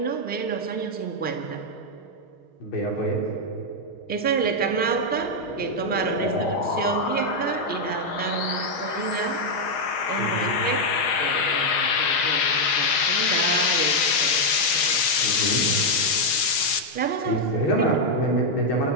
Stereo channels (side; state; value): right; late; 6.4 ms